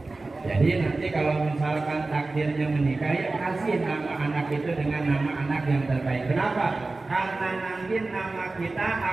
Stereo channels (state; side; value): quieter; left; 3.4 dB